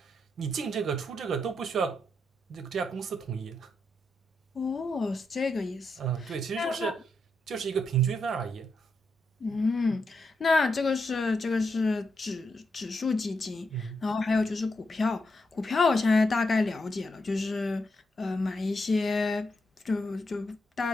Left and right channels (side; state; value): both; normal; correlation 0.83